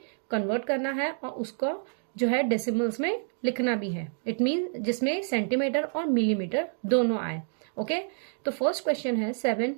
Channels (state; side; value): silent; left; digital silence